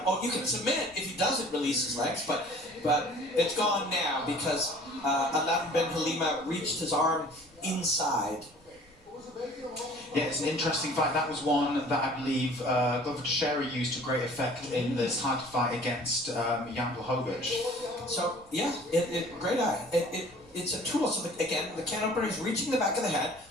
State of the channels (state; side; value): normal; both; correlation 0.49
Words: Oh, you can submit if he doesn't release his legs, but it's gone now because Aladin Ben Halima reached his arm inside. Yeah, it's an interesting fight. That was one that I believe Glover Teixeira used to great effect in this title fight against Jan Blachowicz. So yeah, great eye. It's a tool. So again, the can opener is reaching the back of the head,